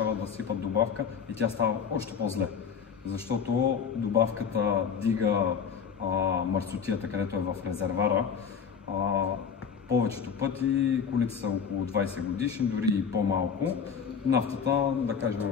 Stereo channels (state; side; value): quieter; right; 6.7 dB